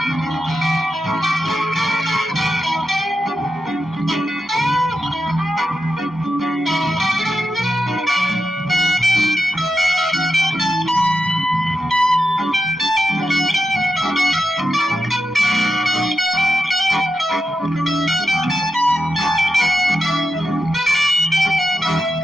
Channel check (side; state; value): both; normal; correlation 0.88